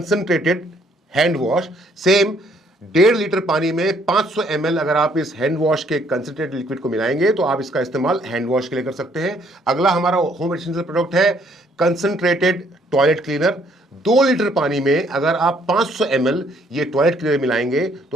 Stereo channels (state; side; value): normal; both; correlation 0.66